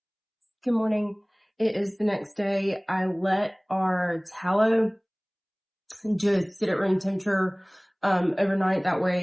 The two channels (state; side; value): identical; both; correlation 1.00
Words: Good morning. It is the next day. I let our tallow just sit at room temperature overnight. That